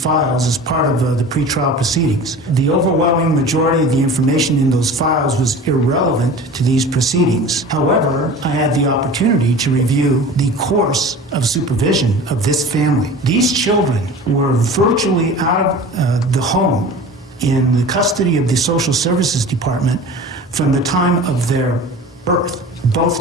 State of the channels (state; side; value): normal; both; correlation 0.38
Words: as part of the pretrial proceedings. The overwhelming majority of the information in those files was irrelevant to these proceedings. However, I had the opportunity to review the course of supervision of this family. These children were virtually out of the home in the custody of the Social Services Department from the time of their birth.